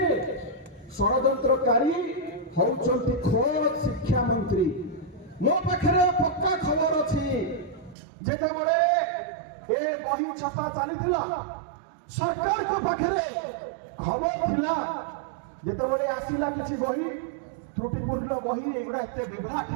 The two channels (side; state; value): left; drops out; at 8.0 s